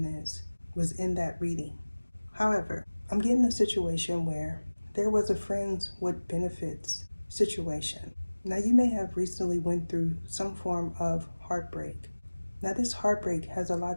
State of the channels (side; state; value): both; inverted; correlation -1.00